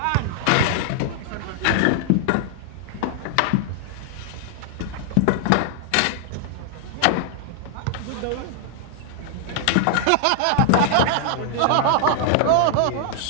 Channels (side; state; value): both; different; correlation 0.00